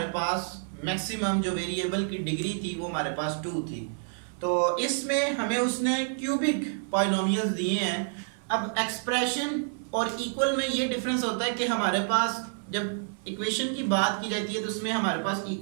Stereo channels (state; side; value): silent; left; 59 dB below the other